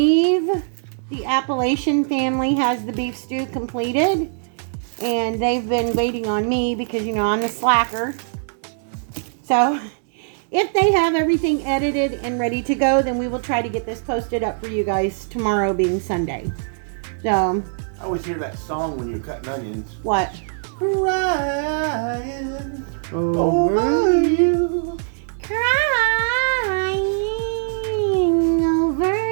the Appalachian family has the beef stew completed, and they've been waiting on me because, you know, I'm the slacker. So if they have everything edited and ready to go, then we will try to get this posted up for you guys tomorrow being Sunday. So I always hear that song when you're cutting onions. what? Crying over you. Crying over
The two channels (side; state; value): left; silent; digital silence